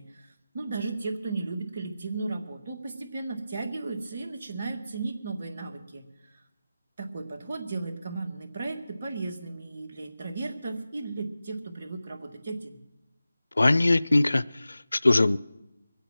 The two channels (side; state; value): both; inverted; correlation -0.94